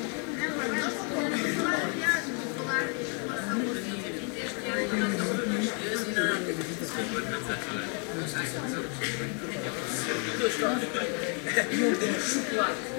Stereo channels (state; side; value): quieter; right; 39.6 dB